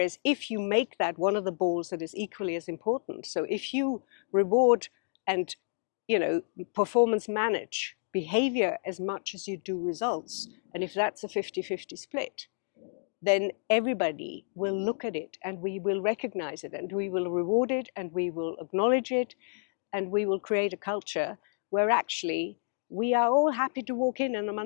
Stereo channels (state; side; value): silent; right; digital silence